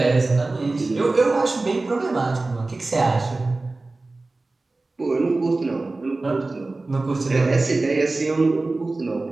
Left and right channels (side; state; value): left; quieter; 3.2 dB